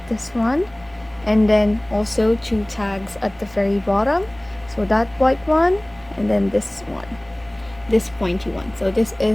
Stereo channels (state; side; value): noise; right; rumble, 26 dB below the sound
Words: this one, and then also 2 tags at the very bottom. So that white one, and then this one, this pointy one. So this